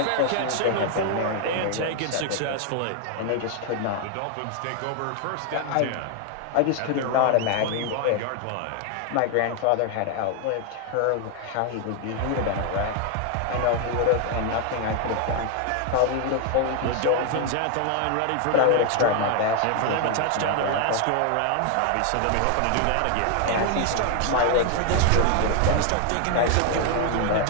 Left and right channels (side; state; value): both; different; correlation 0.00